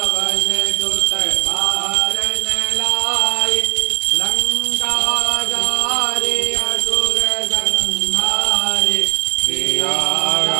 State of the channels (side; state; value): left; quieter; 35.1 dB